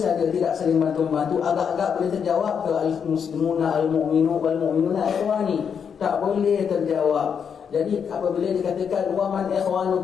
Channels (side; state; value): right; quieter; 7.1 dB